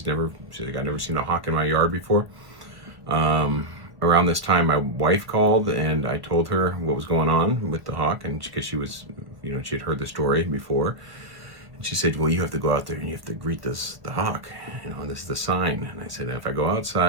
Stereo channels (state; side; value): late; left; 1.2 ms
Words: like, "I've never seen a hawk in my yard before." Around this time, my wife called, and I told her what was going on with the hawk, and because she was, she had heard the story before. And she said, "Well, you have to go out there and you have to greet the hawk. This is the sign." And I said, "If I go